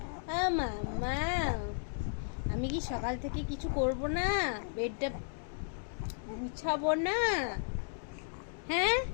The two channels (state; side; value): silent; right; digital silence